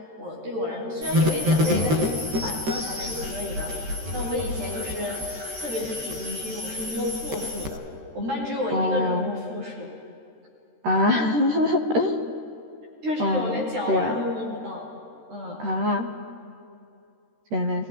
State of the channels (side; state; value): left; late; 13 ms